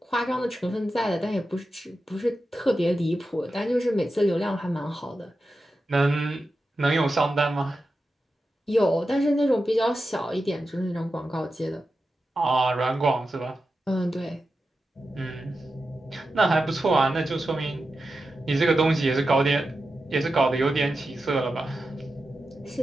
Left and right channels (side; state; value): both; normal; correlation 0.91